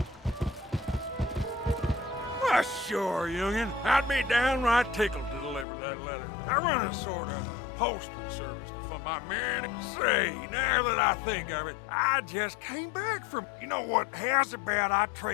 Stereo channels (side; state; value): right; drops out; at 5.7 s